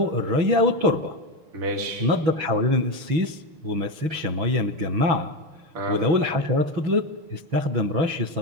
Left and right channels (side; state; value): left; late; 6.2 ms